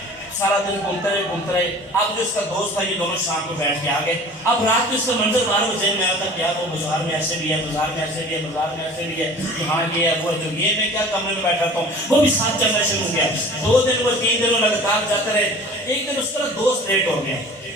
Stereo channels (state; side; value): normal; both; correlation 0.43